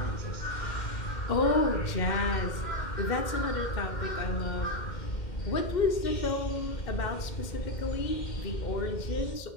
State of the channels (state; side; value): late; right; 2.1 ms